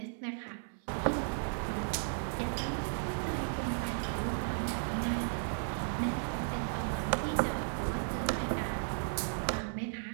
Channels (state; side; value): silent; left; 54 dB below the other